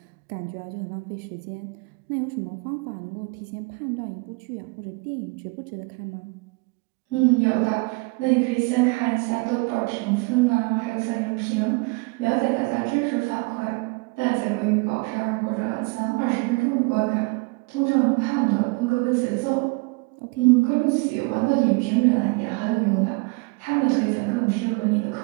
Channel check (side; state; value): left; quieter; 28.7 dB